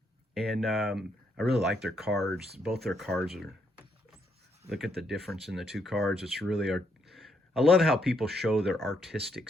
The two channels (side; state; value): both; normal; correlation 0.75